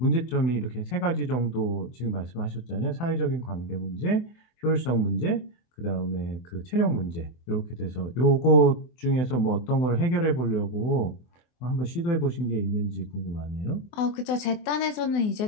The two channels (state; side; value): late; right; 24 ms